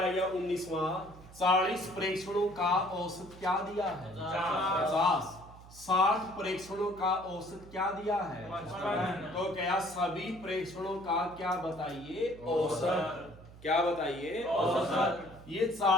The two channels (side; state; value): right; noise; hum, 19 dB below the sound